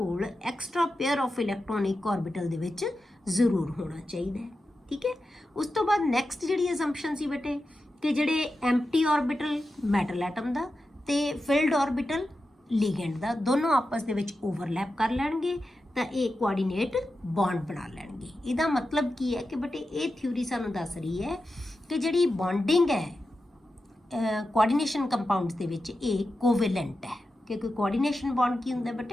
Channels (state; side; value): normal; both; correlation 0.91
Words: extra pair of electronic orbital ਦੇ ਵਿੱਚ ਜ਼ਰੂਰ ਹੋਣਾ ਚਾਹੀਦਾ ਹੈ, ਠੀਕ ਹੈ। ਉਸ ਤੋਂ ਬਾਅਦ ਨੈਕਸਟ ਜਿਹੜੀ ਅਸੰਪਸ਼ਨ ਸੀ ਬੇਟੇ ਕਿ ਜਿਹੜੇ ਐਮਟੀ ਆਰਬਿਟਲ ਮੈਟਲ ਐਟਮ ਦਾ ਤੇ ਫਿਲਡ ਆਰਬਿਟਲ ਲੀਗੈਂਡ ਦਾ ਦੋਨੋਂ ਆਪਸ ਦੇ ਵਿੱਚ ਓਵਰਲੈਪ ਕਰ ਲੈਣਗੇ ਤਾਂ ਇਹ ਕੋਆਰਡੀਨੇਟ ਬੌਂਡ ਬਣਾ ਲੈਣਗੇ। ਇਹਦਾ ਮਤਲਬ ਕੀ ਹੈ ਕਿ ਬੇਟੇ ਇਹ ਥਿਊਰੀ ਸਾਨੂੰ ਦੱਸ ਰਹੀ ਹੈ ਕਿ ਜਿਹੜੀ ਬੌਂਡਿੰਗ ਹੈ कोआर्ਡੀਨੇਸ਼ਨ ਕੰਪਾਊਂਡਸ ਦੇ ਵਿੱਚ ਇਹ ਕੋਵੈਲੈਂਟ ਹੈ, ਕਿਉਂਕਿ ਕੋਆਰਡੀਨੇਸ਼ਨ ਬੌਂਡ ਕੀ ਹੁੰਦਾ